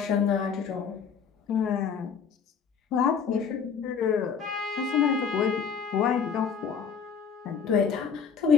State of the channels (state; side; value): quieter; right; 6.6 dB